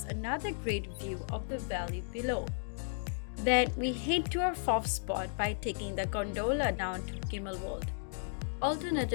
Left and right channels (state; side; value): silent; right; digital silence